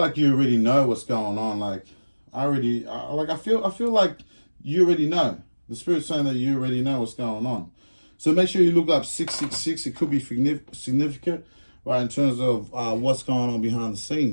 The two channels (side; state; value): both; inverted; correlation -1.00